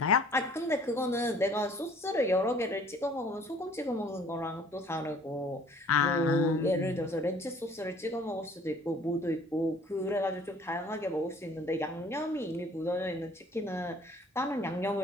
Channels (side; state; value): both; normal; correlation 0.54